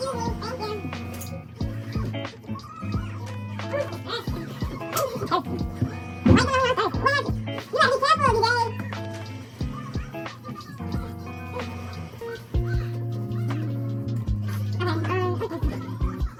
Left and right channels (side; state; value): both; identical; correlation 1.00